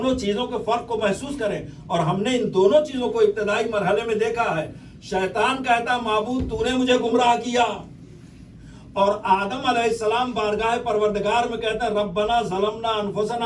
چیزوں کے فرق کو محسوس کریں, اور ہم نے ان دونوں چیزوں کو ابتدائی مرحلے میں دیکھا ہے. شیطان کہتا معبود تو نے مجھے گمراہ کیا, اور آدم علیہ السلام بارگاہ پروردگار میں کہتا ہے ربنا ظلمنا انفسنا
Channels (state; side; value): identical; both; correlation 1.00